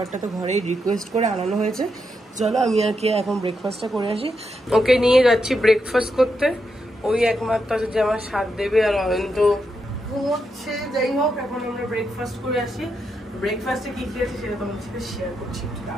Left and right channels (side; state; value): both; normal; correlation 0.83